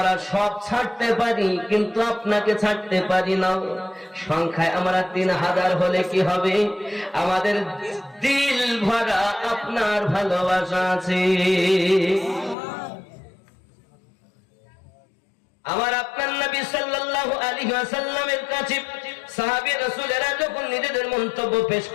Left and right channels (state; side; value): drops out; right; at 12.6 s